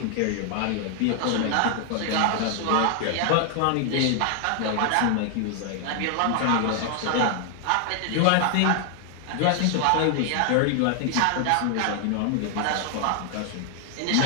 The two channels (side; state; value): both; different; correlation 0.00